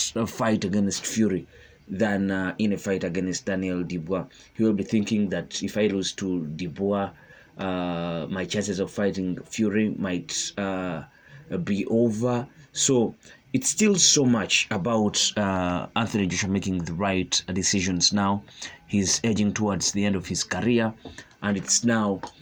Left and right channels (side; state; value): both; identical; correlation 1.00